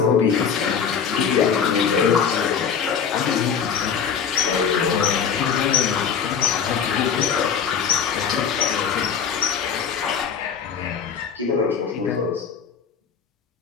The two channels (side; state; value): right; quieter; 7.0 dB